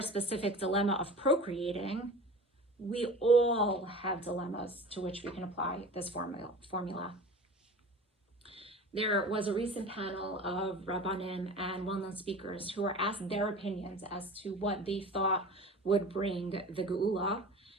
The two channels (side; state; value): both; normal; correlation 0.38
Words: specific dilemma of procreating, we all have dilemmas to which we can apply this formula. There was a recent panel of Rabbanim and well-known speakers who were asked their opinions as to what they thought would bring the geula,